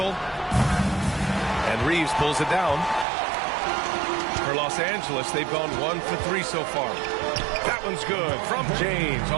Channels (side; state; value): left; drops out; at 3.1 s